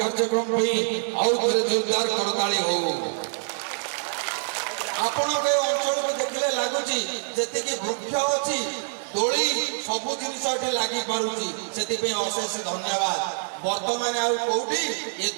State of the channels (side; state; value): left; silent; 61 dB below the other